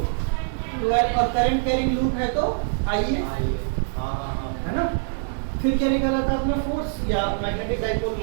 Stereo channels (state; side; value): silent; left; digital silence